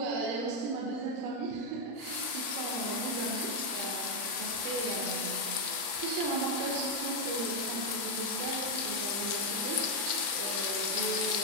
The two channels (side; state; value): left; late; 35 ms